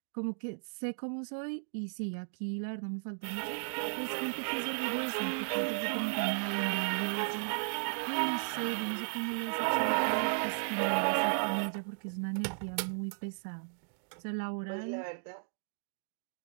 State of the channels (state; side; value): silent; left; digital silence